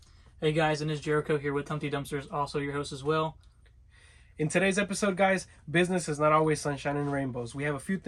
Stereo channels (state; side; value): identical; both; correlation 1.00